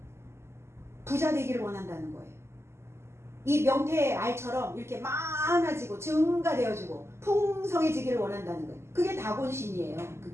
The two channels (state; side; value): late; left; 0.13 ms